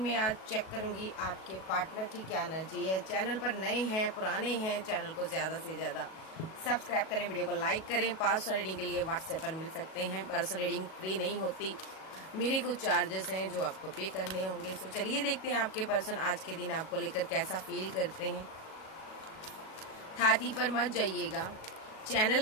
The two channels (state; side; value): late; right; 37 ms